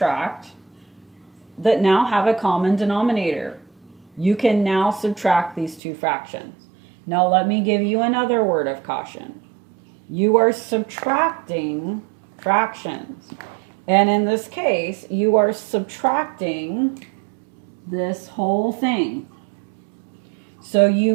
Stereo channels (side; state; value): left; drops out; at 5.8 s